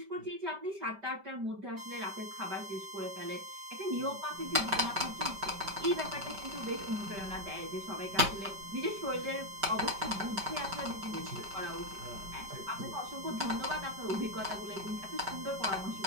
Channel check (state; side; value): late; left; 5.1 ms